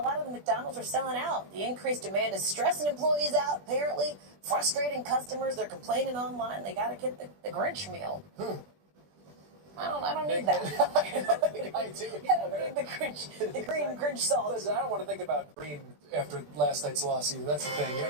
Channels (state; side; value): late; left; 20 ms